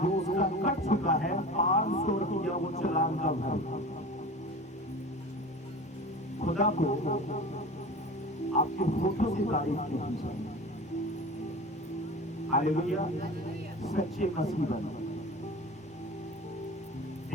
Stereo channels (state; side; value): normal; both; correlation 0.35